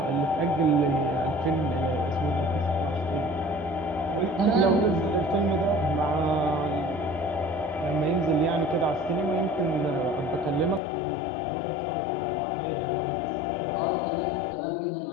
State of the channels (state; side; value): drops out; right; at 10.8 s